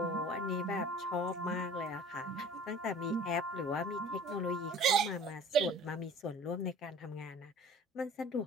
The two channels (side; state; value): both; normal; correlation 0.46